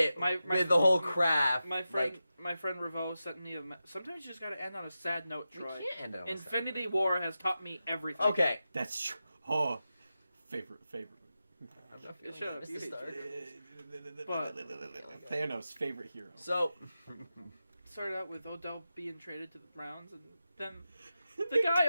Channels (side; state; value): both; inverted; correlation -0.91